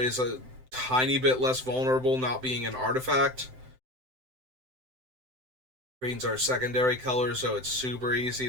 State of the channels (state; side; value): late; left; 7.8 ms